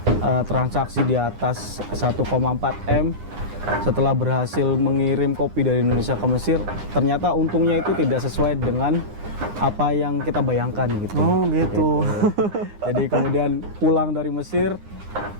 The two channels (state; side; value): late; left; 9.8 ms